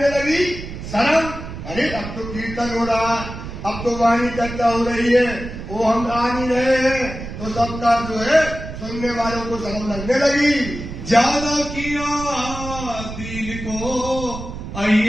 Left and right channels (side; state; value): right; noise; rumble, 9 dB below the sound